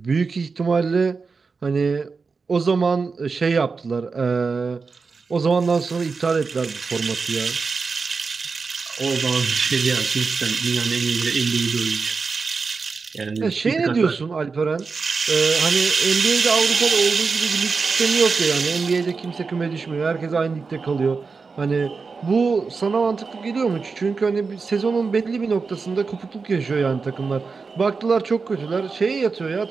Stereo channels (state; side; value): quieter; left; 4.7 dB